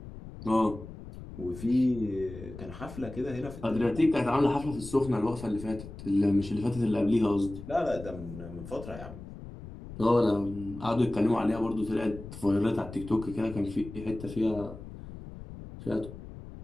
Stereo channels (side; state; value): left; noise; rumble, 13 dB below the sound